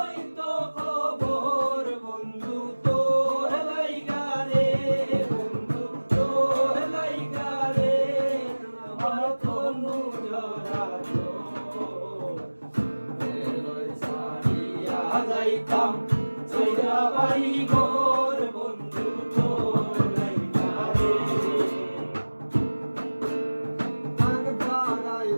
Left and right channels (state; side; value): inverted; both; correlation -1.00